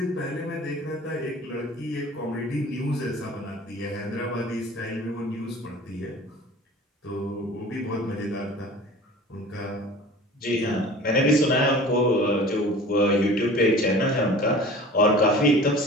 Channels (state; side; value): normal; both; correlation 0.42